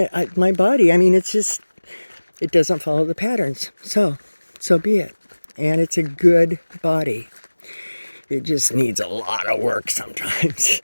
my body, I mean, it's just, it doesn't follow the patterns. So be it. And it's a good body. It just needs a lot of work sometimes.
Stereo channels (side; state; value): both; inverted; correlation -1.00